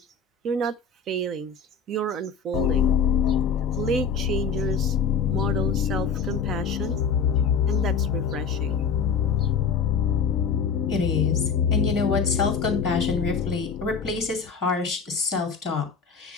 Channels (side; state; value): right; quieter; 5.6 dB